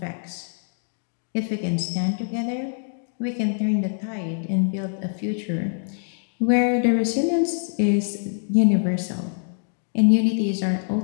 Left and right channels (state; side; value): silent; right; digital silence